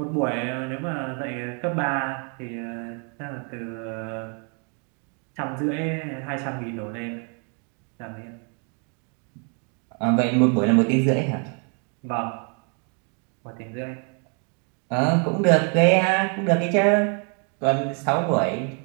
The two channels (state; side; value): quieter; left; 38.9 dB